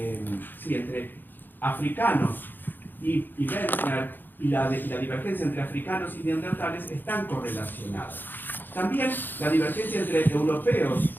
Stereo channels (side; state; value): right; late; 0.091 ms